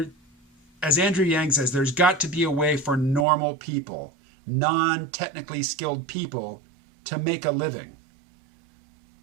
As Andrew Yang says, there's got to be a way for normal people, non-technically skilled people, to make a living.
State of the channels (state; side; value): drops out; left; at 3.2 s